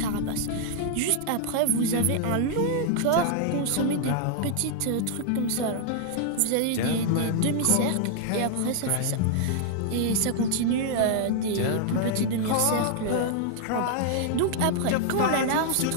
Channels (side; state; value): both; different; correlation -0.01